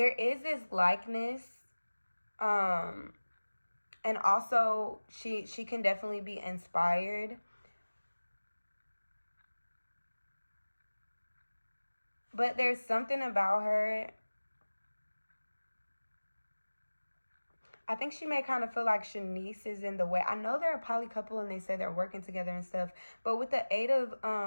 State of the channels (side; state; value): both; inverted; correlation -1.00